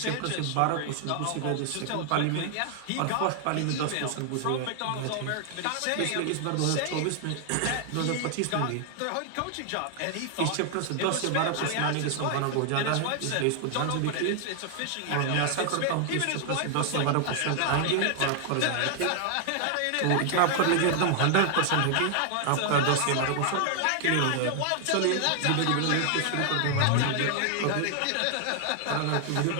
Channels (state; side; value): different; both; correlation 0.00